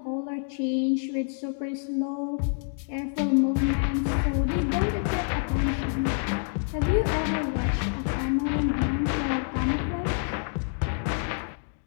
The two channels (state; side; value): silent; right; digital silence